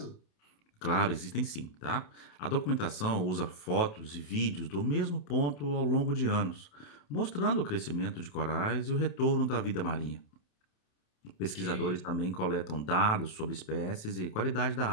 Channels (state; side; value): late; right; 28 ms